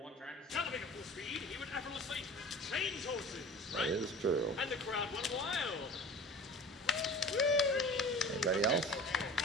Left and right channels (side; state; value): both; normal; correlation 0.41